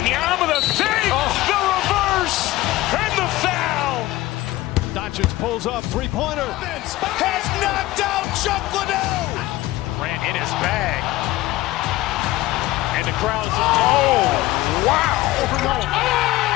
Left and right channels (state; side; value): quieter; right; 17.3 dB